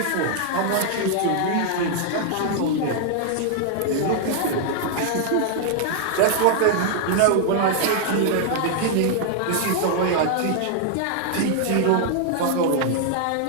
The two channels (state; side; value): different; both; correlation -0.01